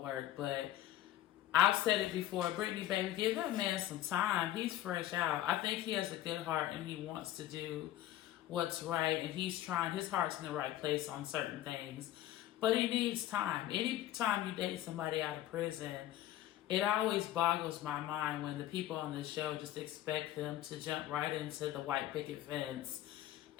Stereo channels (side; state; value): right; quieter; 13.3 dB